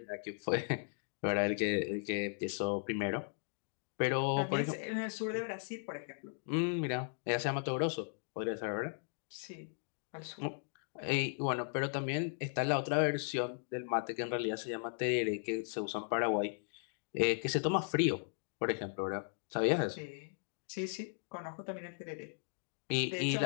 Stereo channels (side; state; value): right; silent; digital silence